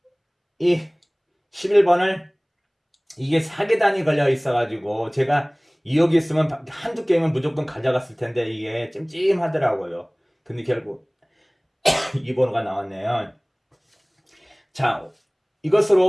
이 11번을 이게 4계단이 걸려 있어가지고 제가 2억 있으면 한두 게임은 무조건 가져갔을 텐데 이게 찜찜하더라고요. 근데 결국 이 번호가 나왔네요. 자,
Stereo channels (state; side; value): identical; both; correlation 1.00